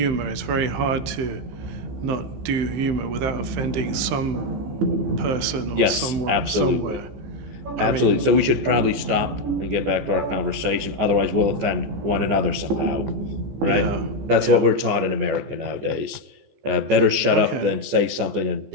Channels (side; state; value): left; late; 14 ms